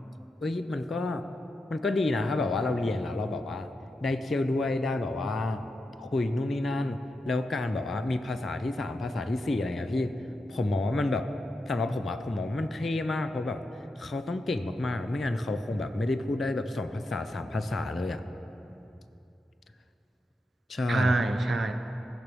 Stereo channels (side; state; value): both; normal; correlation 0.87